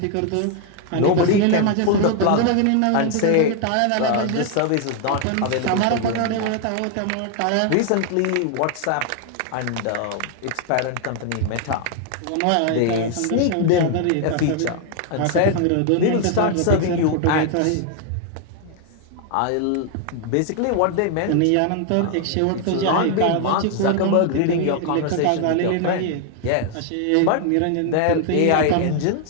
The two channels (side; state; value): both; different; correlation 0.00